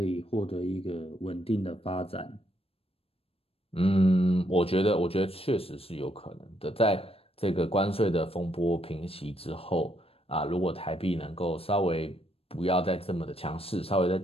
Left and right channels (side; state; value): right; late; 0.28 ms